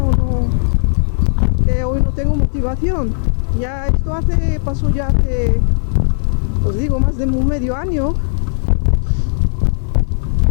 no, es que hoy no tengo motivación. Ya esto pasó ya hace, os digo, más de un medio año.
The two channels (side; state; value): right; silent; digital silence